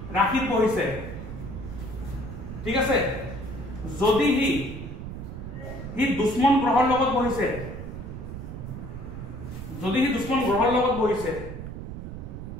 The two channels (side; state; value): right; noise; rumble, 9 dB below the sound